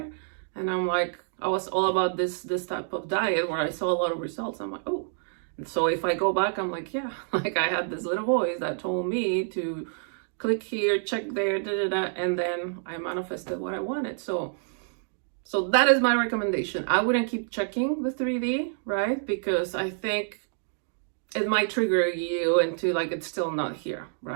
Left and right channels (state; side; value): silent; left; digital silence